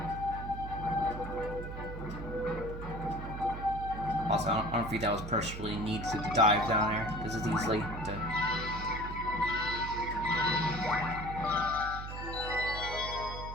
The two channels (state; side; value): noise; right; hum, 8 dB below the sound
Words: Also, I don't think that was personally needed to dive down there, because it's easily to...